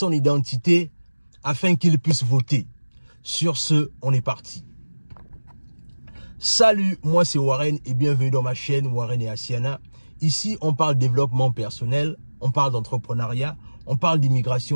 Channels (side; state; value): both; inverted; correlation -1.00